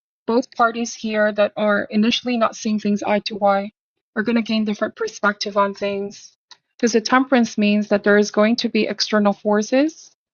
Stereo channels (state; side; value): identical; both; correlation 1.00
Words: Both parties here that are initially not seeing things eye to eye are going to gain different perspective on things. Because the temperance means that there is going to be external forces